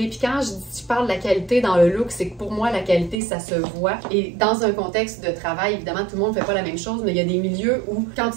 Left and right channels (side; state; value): left; drops out; at 3.2 s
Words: Puis quand je parle de la qualité dans le look, c'est que pour moi, la qualité, ça se voit. Et dans un contexte de travail, évidemment, tout le monde ne fait pas la même chose, mais il y a des milieux où, quand